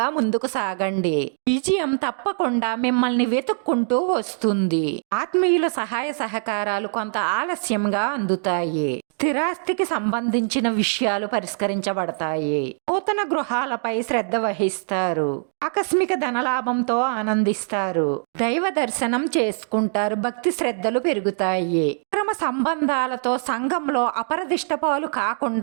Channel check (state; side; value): silent; left; 63 dB below the other